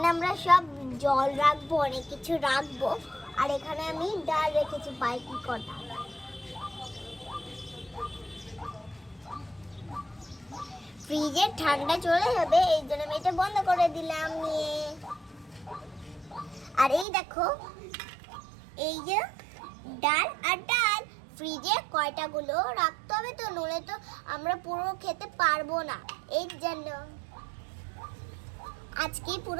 আমরা সব জল রাখবো, অনেক কিছু রাখবো। আর এখানে আমি ডাল রেখেছি বাইকি কটা। ফ্রিজে ঠান্ডা চলে যাবে, এই জন্য আমি এটা বন্ধ করে দিলাম নিয়ে। আর এই দেখো এই যে ডাল আর ডাল, ফ্রিজে কয়টা গুলো রাখতে হবে, তো নলে তো আমরা পুরো খেতে পারবো না। এই জন্য আজকে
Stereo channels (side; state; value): left; drops out; at 17.1 s